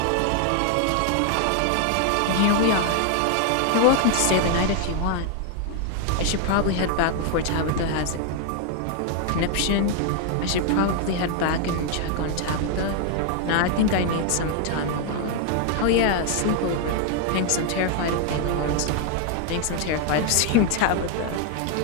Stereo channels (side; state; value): both; different; correlation 0.00